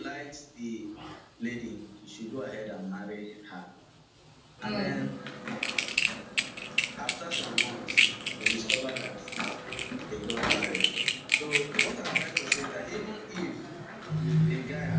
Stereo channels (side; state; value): both; identical; correlation 1.00